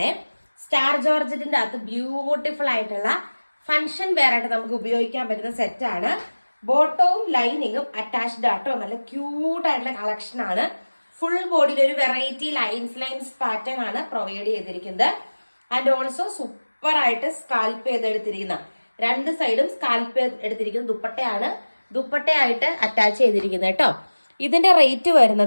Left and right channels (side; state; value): both; inverted; correlation -1.00